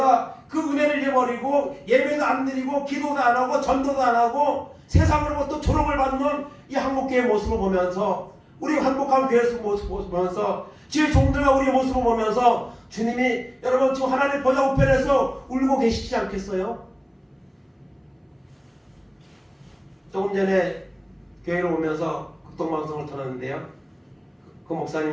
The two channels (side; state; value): both; identical; correlation 1.00